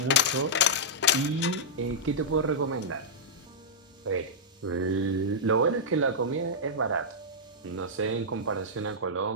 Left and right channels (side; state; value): both; normal; correlation -0.10